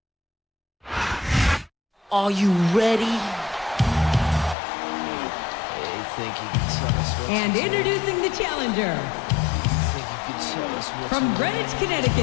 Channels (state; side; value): drops out; right; at 4.5 s